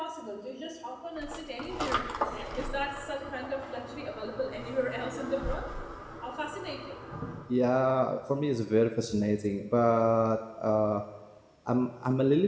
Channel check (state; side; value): identical; both; correlation 1.00